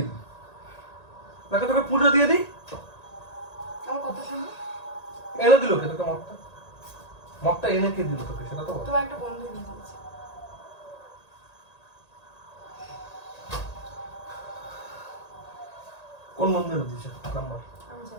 দিই। তোকে পুজো দিয়ে দিই। আমার কথা শোনো। এনে দিল কে তোকে মদটা? মদটা এনে কে দিল তোকে সেটা তো বল। তোমার একটা বন্ধু এনে দিয়েছে। কোন বন্ধু এনে দিয়েছে নাম বল। আমি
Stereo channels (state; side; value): late; right; 1.8 ms